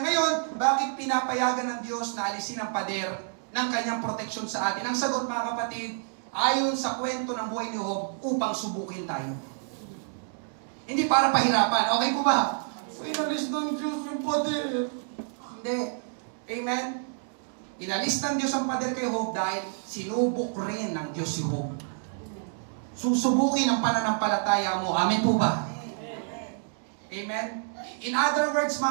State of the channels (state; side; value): silent; left; digital silence